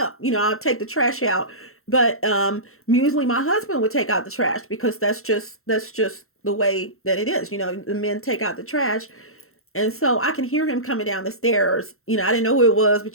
I'll take the trash out. But usually my husband would take out the trash because that's just the way that it is. The men take out the trash. And so I can hear him coming down the stairs. I didn't know who it was,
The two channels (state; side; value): late; right; 0.62 ms